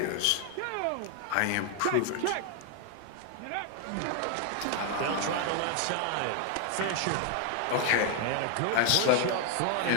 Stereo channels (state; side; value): different; both; correlation 0.00